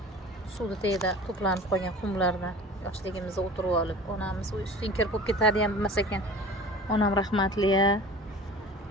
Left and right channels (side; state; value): both; normal; correlation 0.41